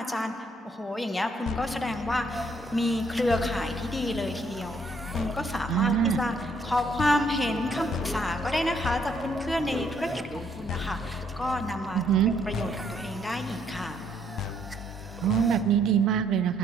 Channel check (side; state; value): both; normal; correlation 0.68